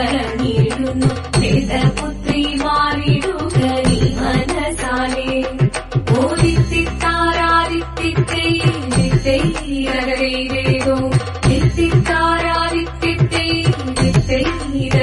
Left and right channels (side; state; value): both; identical; correlation 1.00